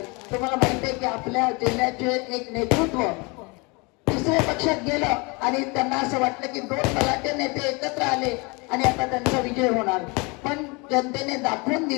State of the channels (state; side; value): quieter; right; 28.4 dB